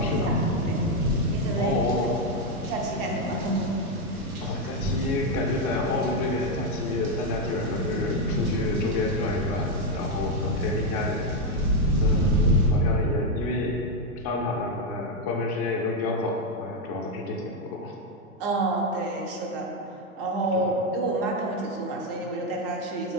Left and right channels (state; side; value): normal; both; correlation 0.04